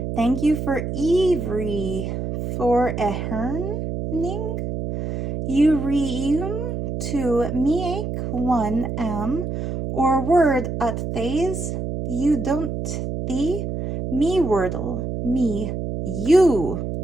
Thank you for Ivry for eherning. You reum to meek one or word at thays you don't thee me wordle me you.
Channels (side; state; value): right; noise; hum, 4 dB below the sound